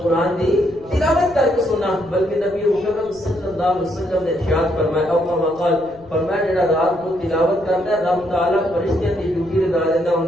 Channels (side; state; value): left; noise; rumble, 24 dB below the sound